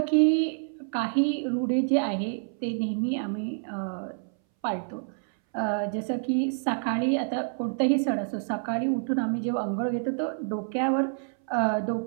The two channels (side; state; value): left; silent; 60 dB below the other